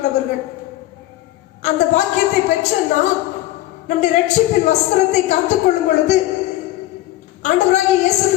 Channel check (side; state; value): right; quieter; 15.8 dB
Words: அந்த பாக்கியத்தை பெற்ற நாம் நம்முடைய ரட்சிப்பின் வஸ்திரத்தை காத்துக்கொள்ளும் பொழுது ஆண்டவராகிய இயேசு